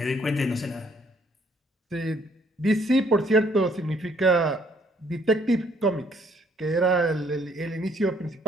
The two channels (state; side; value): normal; both; correlation 0.65